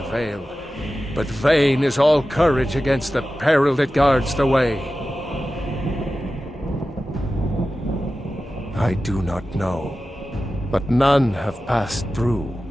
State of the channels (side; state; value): both; normal; correlation 0.94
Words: veil, but vain is all courage against the peril that guards the way. I do not know, but none have passed through.